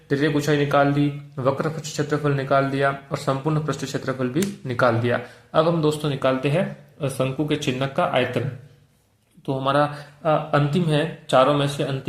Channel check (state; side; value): identical; both; correlation 1.00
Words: त्रिज्यक ऊंचाई निकाल दी, वक्र पृष्ठ क्षेत्रफल निकाल दिया और संपूर्ण पृष्ठ क्षेत्रफल भी निकाल दिया। अब हम दोस्तों निकालते हैं शंकु के चिन्हक का आयतन। तो हमारा अंतिम है, चारों में से